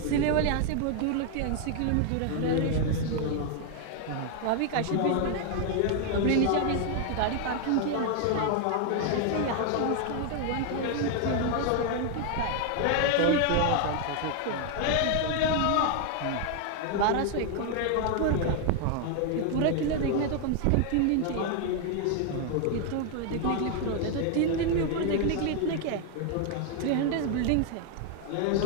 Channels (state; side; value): different; both; correlation 0.00